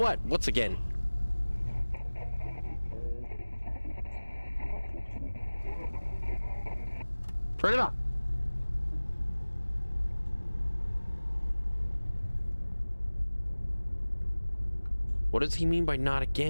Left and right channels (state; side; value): inverted; both; correlation -1.00